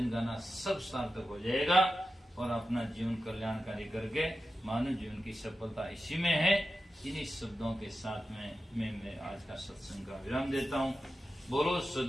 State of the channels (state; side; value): normal; both; correlation 0.92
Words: गाना सब सार्थक हो जाएगा। और अपना जीवन कल्याणकारी करके मानव जीवन की सफलता इसी में है। इन्हीं शब्दों के साथ में मैं आज का सत्संग का विराम देता हूँ। बोलो